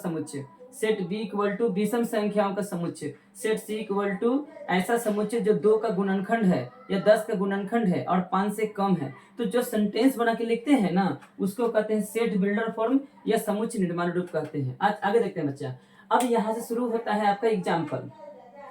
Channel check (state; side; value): identical; both; correlation 1.00